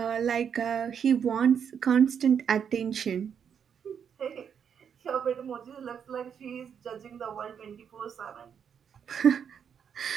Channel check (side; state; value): left; quieter; 7.6 dB